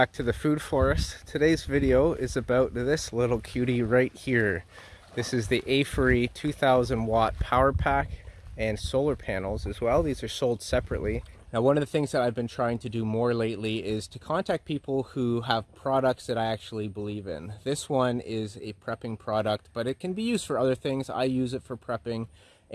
to the food forest. Today's video is about this little cutie right here. This is the Aferiy 2000 watt power pack and solar panels as well. These are sold separately. Now, one of the things that I've been trying to do more lately is to contact people who have products that I actually believe in. This one is a prepping product, but it can be used for other things. I use it for prepping,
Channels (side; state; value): both; identical; correlation 1.00